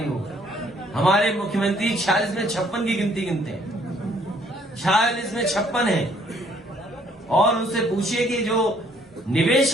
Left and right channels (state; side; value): normal; both; correlation 0.63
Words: हो? हमारे मुख्यमंत्री 46 में 56 की गिनती गिनते हैं, 46 में 56 है। और उनसे पूछिए कि जो निवेश